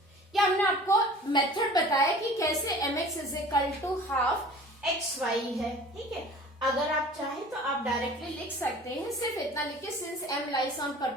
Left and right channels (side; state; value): both; normal; correlation 0.45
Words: ये हमने आपको मेथड बताया कि कैसे mx is equal to half xy है, ठीक है। अगर आप चाहें तो आप डायरेक्टली लिख सकते हैं, सिर्फ इतना लिखिए since m lies on